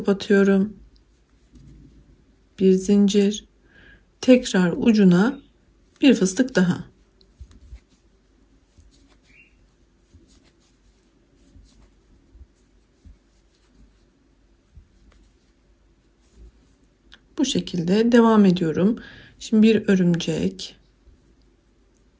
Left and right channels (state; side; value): identical; both; correlation 1.00